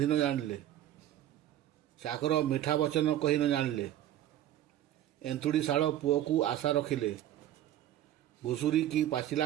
ନ ଜାଣିଲେ, ଚାକର ମିଠା ବଚନ କହି ନ ଜାଣିଲେ, ଏନ୍ତୁଡ଼ି ଶାଳ ପୁଅକୁ ଆଶା ରଖିଲେ, ଘୁଷୁରୀ କି ପାଚିଲା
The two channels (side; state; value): left; quieter; 12.3 dB